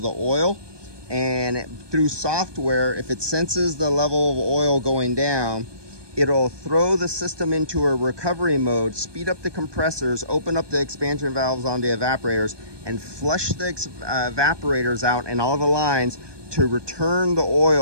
the oil. And through software, if it senses the level of oil going down, it'll throw the system into a recovery mode, speed up the compressors, open up the expansion valves on the evaporators, and flush the evaporators out and all the lines to return the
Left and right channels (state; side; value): late; left; 1.2 ms